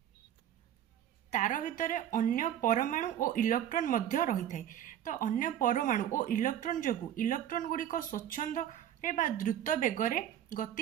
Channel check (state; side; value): quieter; left; 10.6 dB